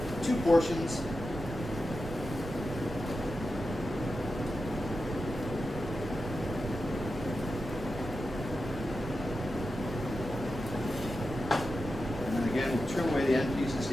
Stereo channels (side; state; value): right; noise; rumble, 12 dB below the sound